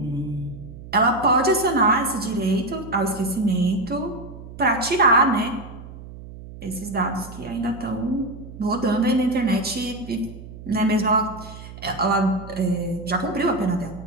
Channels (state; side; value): noise; right; hum, 15 dB below the sound